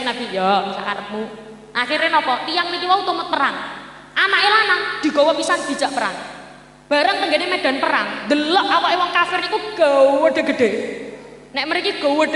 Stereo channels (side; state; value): both; identical; correlation 1.00